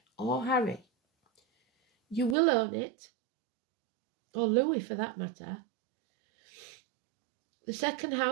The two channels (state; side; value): drops out; left; at 2.4 s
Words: or Harry. You will own it, or Louis for that matter. The second